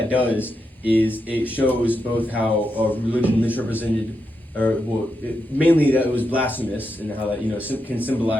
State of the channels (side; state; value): both; normal; correlation 0.85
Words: does is it shows both how religion misrepresented, mainly that it was blasphemous, and how that can